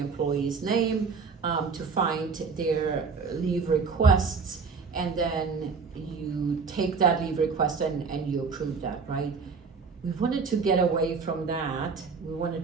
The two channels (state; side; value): quieter; left; 5.2 dB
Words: name to find their leave requests, and then you take that leave request and you approve that, right? We wanted to get away from that. We wanted